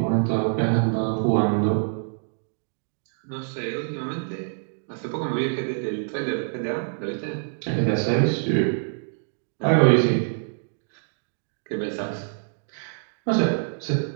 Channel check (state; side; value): silent; left; digital silence